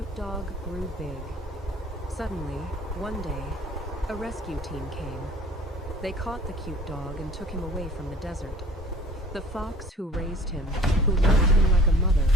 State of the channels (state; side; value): normal; both; correlation 0.49